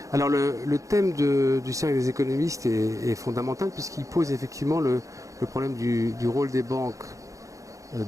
Alors le thème du cercle des économistes est fondamental puisqu'il pose effectivement le problème du rôle des banques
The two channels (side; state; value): left; late; 0.16 ms